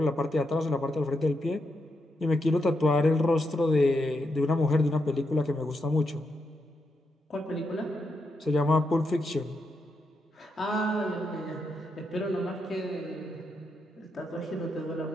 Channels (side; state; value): both; normal; correlation 0.83